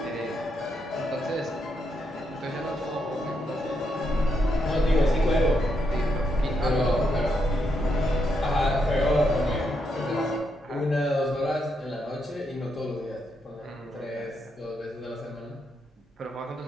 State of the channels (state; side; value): normal; both; correlation 0.80